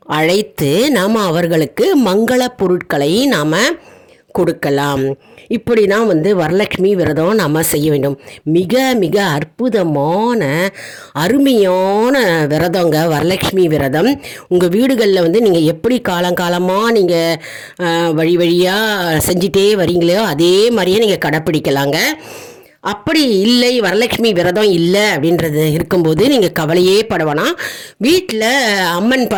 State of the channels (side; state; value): both; identical; correlation 1.00